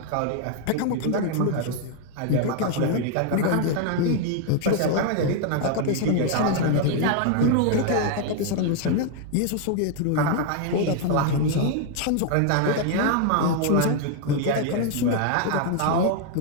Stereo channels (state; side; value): different; both; correlation 0.00